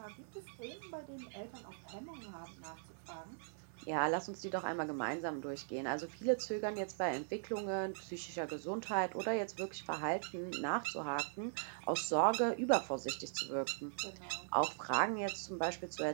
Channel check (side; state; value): left; silent; 51 dB below the other